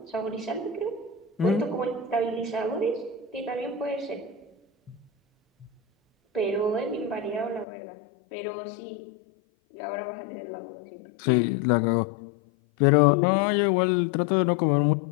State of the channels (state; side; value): drops out; right; at 7.7 s